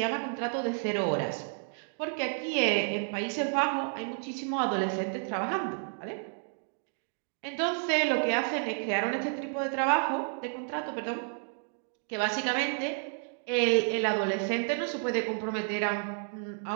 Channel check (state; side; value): silent; left; 57 dB below the other